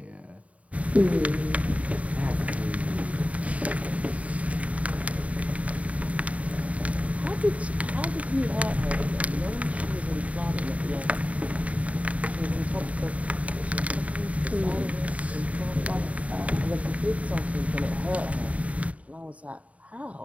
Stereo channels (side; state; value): left; late; 0.067 ms